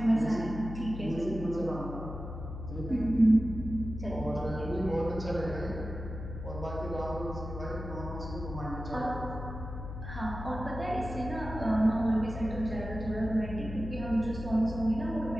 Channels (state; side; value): noise; left; hum, 8 dB below the sound